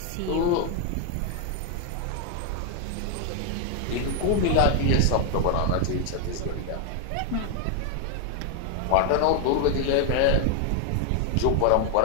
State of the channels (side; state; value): both; different; correlation 0.00